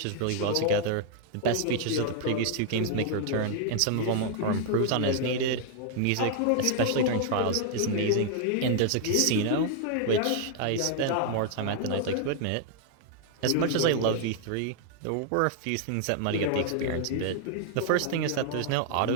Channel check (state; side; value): different; both; correlation 0.00